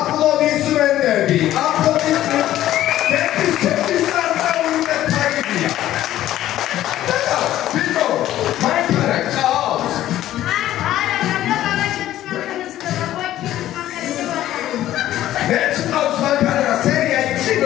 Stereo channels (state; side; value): quieter; right; 13.4 dB